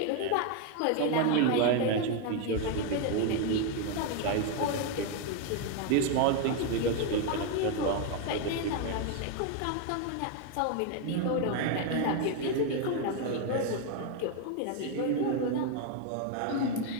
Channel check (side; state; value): both; different; correlation 0.01